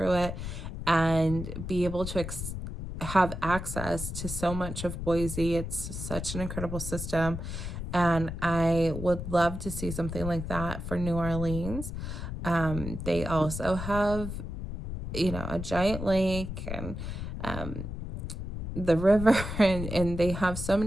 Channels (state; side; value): noise; left; rumble, 6 dB below the sound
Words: it, and be able to have access to so much of Boise. It's such an incredible system. And I would love to see something like that for New Orleans. They also have, a giant lake and the river, and they have so